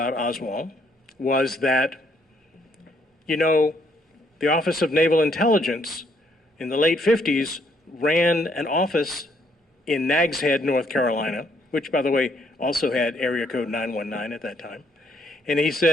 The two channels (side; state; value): both; normal; correlation 0.70